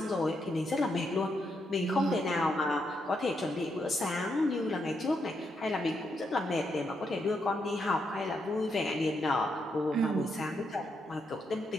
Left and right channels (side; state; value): both; normal; correlation 0.80